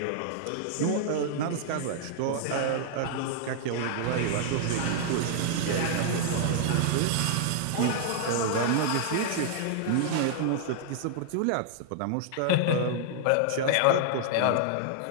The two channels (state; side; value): different; both; correlation -0.01